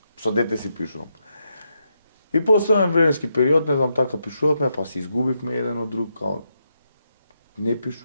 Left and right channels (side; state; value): both; inverted; correlation -0.83